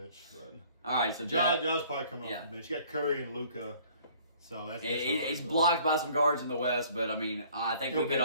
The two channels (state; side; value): inverted; both; correlation -0.55